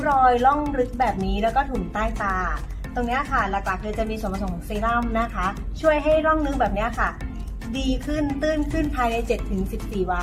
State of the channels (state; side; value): identical; both; correlation 1.00